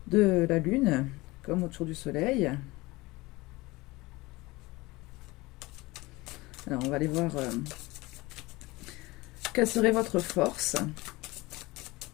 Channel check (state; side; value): quieter; right; 21.6 dB